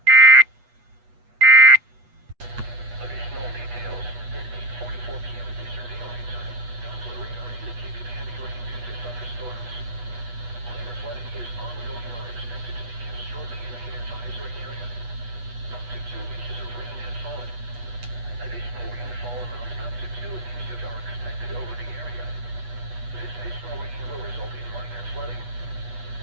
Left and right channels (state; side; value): late; left; 8.2 ms